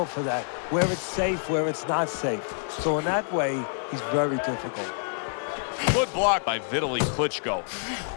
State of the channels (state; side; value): silent; right; 60 dB below the other